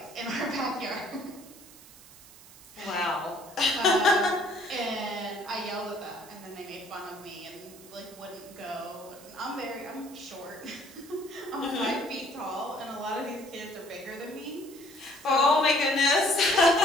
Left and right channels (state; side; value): noise; right; hiss, 20 dB below the sound